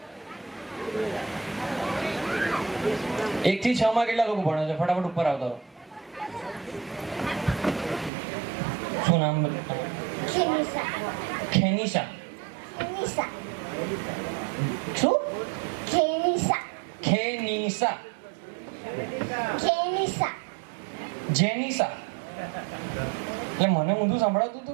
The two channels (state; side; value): drops out; left; at 8.1 s